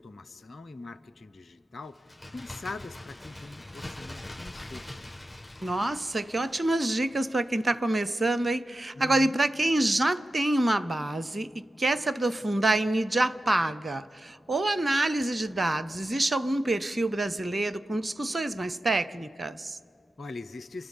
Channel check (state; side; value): normal; both; correlation 0.93